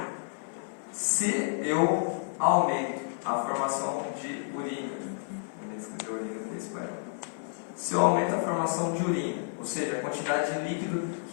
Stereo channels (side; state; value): right; silent; 58 dB below the other